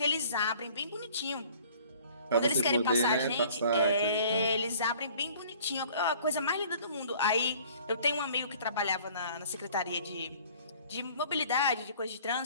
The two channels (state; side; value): inverted; both; correlation -0.52